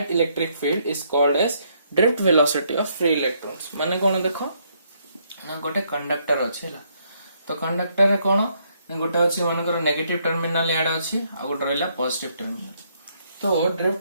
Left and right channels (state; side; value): inverted; both; correlation -0.72